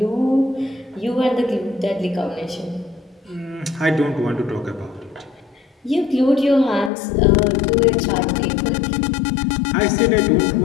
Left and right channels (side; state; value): right; drops out; at 6.9 s